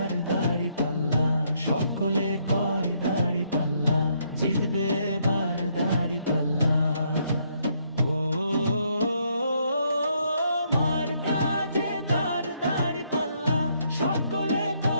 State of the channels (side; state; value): both; inverted; correlation -0.72